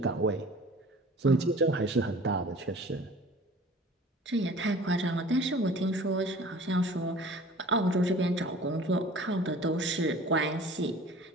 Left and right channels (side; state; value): both; normal; correlation 0.46